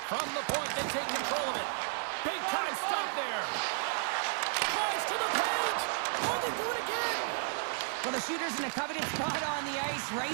From the point, they take control of it. Big time stop there. Tries to the paint. Oh, they do it again. Well, the shooter's in a coveted spot on the ice,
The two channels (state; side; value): silent; left; digital silence